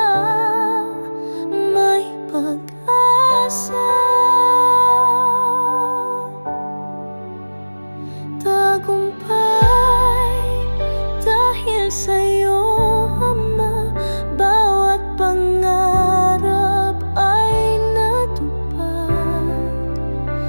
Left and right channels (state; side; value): inverted; both; correlation -1.00